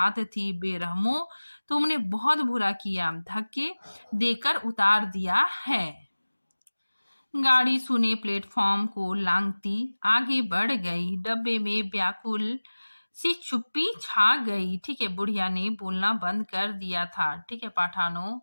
थी, बेरहमो, तुमने बहुत बुरा किया, धक्के देकर उतार दिया है। गाड़ी सुने प्लेटफॉर्म को लांघती आगे बढ़ गई। डब्बे में व्याकुल सी चुप्पी छा गई। ठीक है, बुढ़िया ने बोलना बंद कर दिया था। ठीक है, पठानों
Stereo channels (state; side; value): inverted; both; correlation -1.00